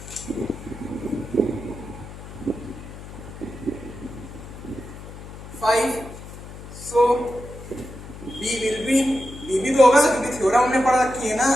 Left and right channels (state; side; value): noise; left; hum, 13 dB below the sound